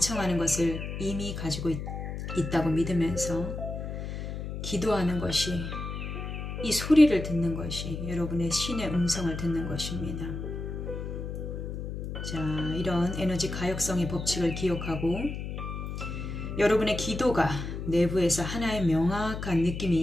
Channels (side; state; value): left; noise; hum, 6 dB below the sound